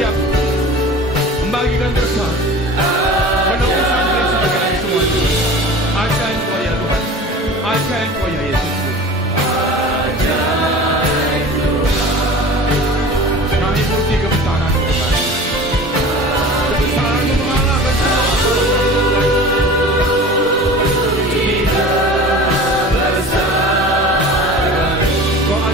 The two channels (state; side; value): normal; both; correlation 0.38